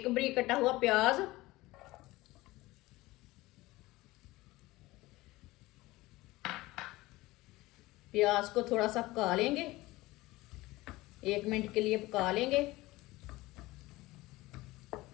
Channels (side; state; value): right; quieter; 19.4 dB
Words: बरीक कटा हुआ प्याज, प्याज को थोड़ा सा पका लेंगे, 1 मिनट के लिए पका लेंगे।